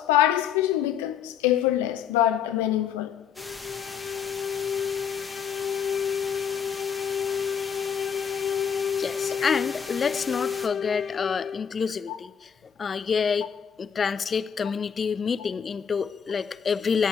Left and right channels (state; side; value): quieter; right; 7.6 dB